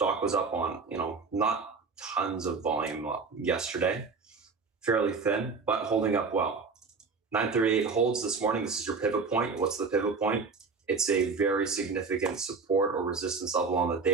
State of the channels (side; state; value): left; quieter; 4.7 dB